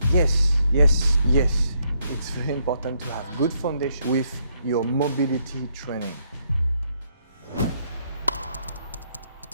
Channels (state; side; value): inverted; both; correlation -0.74